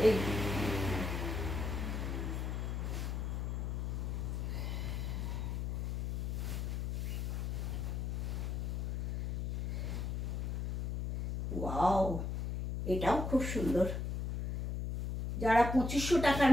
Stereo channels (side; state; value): left; noise; hum, 1 dB below the sound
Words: এই ওয়াও, এটাও খুব সুন্দর। যারা 2500 টাকার